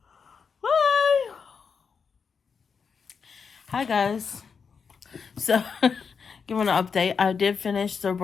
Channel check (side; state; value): right; quieter; 5.9 dB